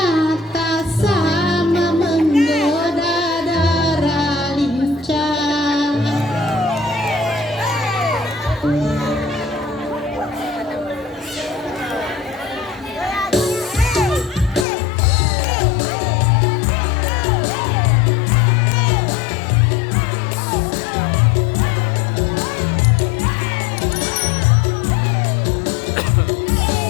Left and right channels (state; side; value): drops out; right; at 14.7 s